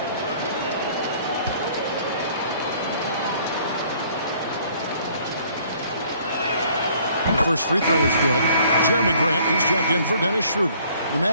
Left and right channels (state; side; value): inverted; both; correlation -0.58